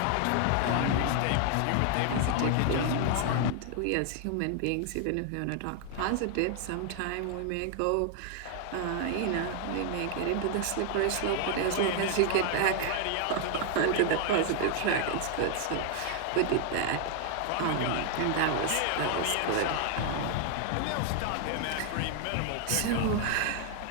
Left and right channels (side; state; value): both; different; correlation 0.00